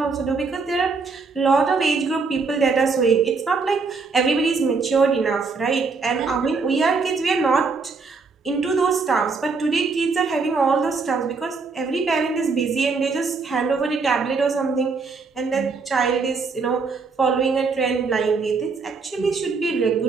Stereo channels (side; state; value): left; quieter; 4.5 dB